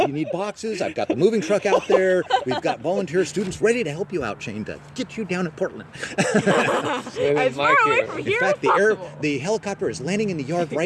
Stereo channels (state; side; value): identical; both; correlation 1.00